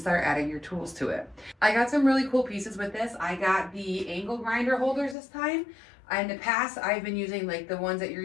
adding your tools to it. I got some really cool pieces with this. I got the angle grinder holders this time. In the past, I've been using like the ones that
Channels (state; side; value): drops out; right; at 5.2 s